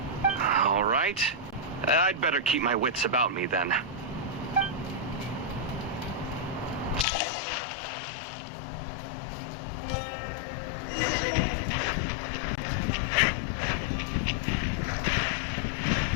All right. I'd better keep my wits about me then.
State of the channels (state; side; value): drops out; right; at 7.1 s